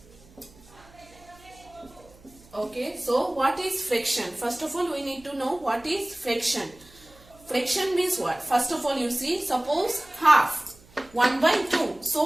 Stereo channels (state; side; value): noise; right; hum, 26 dB below the sound